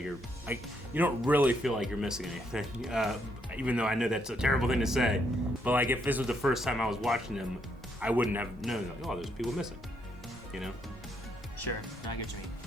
you don't really feel like you're missing anything. Even though I know that's a terrible thing to say, but like if this was the first time I was watching them, I wouldn't have known. Like, oh, there's people missing. Sure, I get what you mean.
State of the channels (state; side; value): normal; both; correlation 0.75